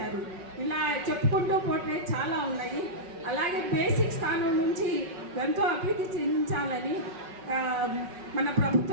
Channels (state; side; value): late; left; 5.4 ms